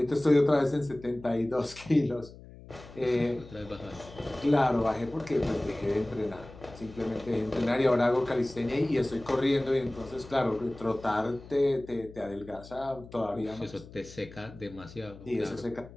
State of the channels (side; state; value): left; noise; hum, 18 dB below the sound